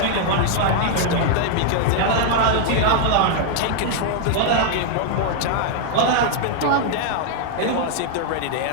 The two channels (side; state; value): both; different; correlation -0.01